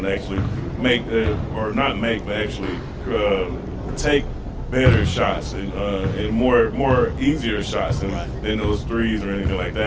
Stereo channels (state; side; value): identical; both; correlation 1.00